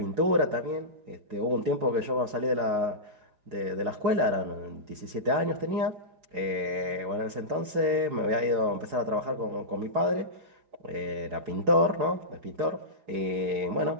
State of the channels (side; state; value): left; late; 4.7 ms